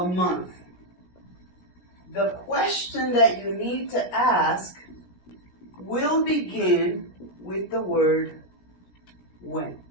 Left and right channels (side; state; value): right; late; 17 ms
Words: month. The question that you need to ask will begin with the word when.